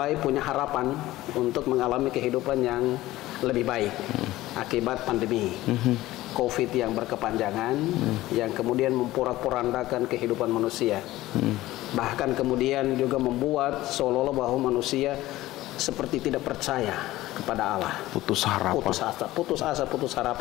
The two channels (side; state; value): right; quieter; 16.6 dB